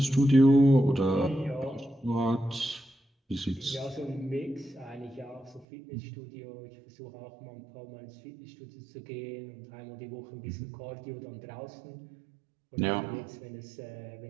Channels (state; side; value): drops out; left; at 5.7 s